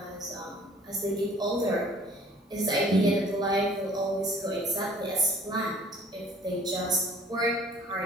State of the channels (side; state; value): both; normal; correlation 0.53